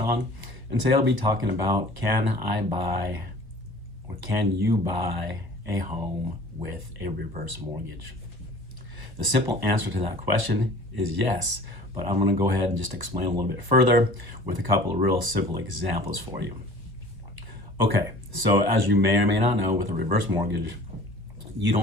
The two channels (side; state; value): left; late; 1.2 ms